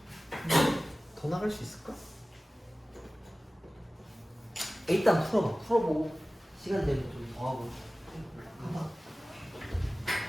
더 나갈 수 있을까? 일단 풀어봐. 풀어보고 시간 되면 좀 더 하고. 가봐.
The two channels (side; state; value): both; normal; correlation 0.97